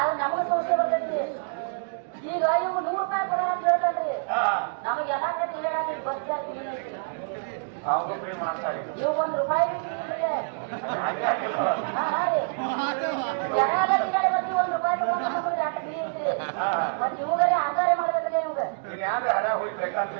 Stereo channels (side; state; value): left; silent; digital silence